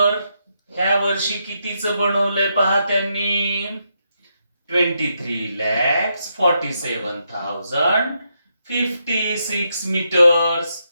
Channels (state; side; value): inverted; both; correlation -0.81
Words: ह्या वर्षी कितीचं बनवलंय पहा त्यांनी, 23,47,056 मीटर्स.